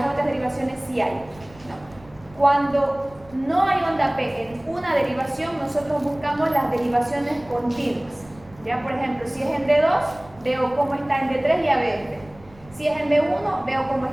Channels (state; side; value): noise; right; rumble, 24 dB below the sound